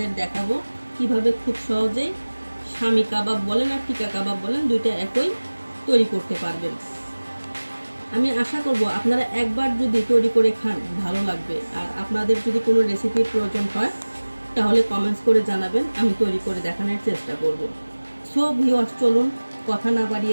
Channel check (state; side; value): inverted; both; correlation -1.00